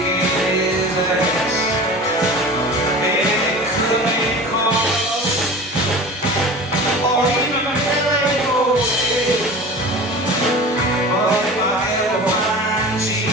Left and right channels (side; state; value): both; normal; correlation 0.36